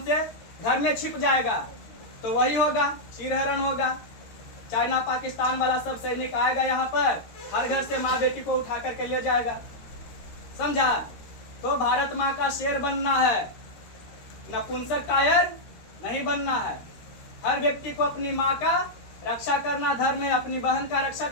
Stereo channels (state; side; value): late; right; 13 ms